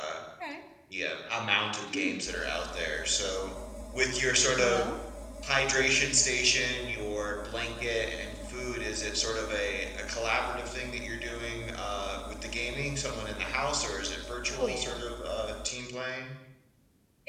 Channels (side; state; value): both; identical; correlation 1.00